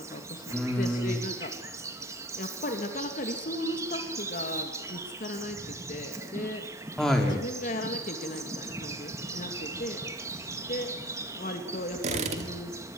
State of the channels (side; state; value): both; normal; correlation 0.45